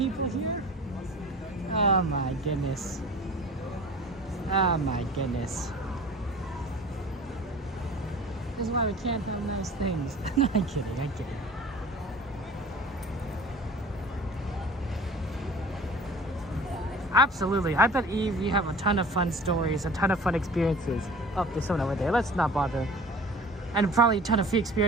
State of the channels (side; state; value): both; normal; correlation 0.42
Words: here. Oh my goodness. Oh my goodness. This is why we can't have nice things. No, I'm kidding, I'm kidding. Absolutely. I bet, Eve, you have a ton of fun stories, a ton of fun experiences. Oh, there's someone over there. Let's not bother. And probably a ton of free